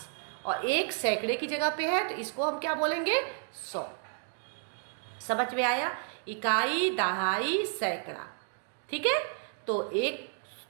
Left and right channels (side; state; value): left; silent; 55 dB below the other